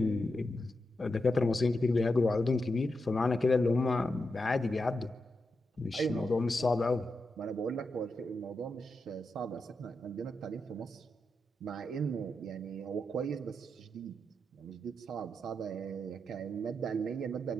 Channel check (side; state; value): both; normal; correlation 0.86